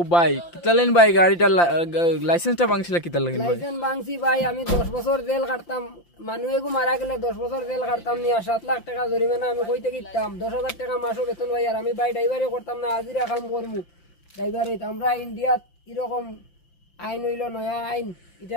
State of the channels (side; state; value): right; late; 5.8 ms